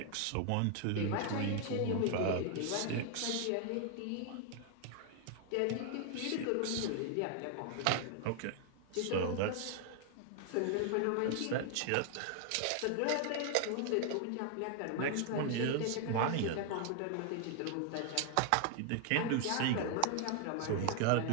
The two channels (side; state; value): both; different; correlation 0.00